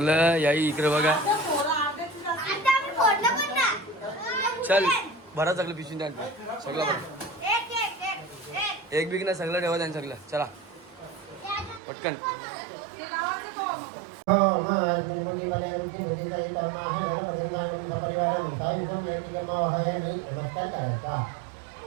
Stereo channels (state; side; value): drops out; left; at 11.8 s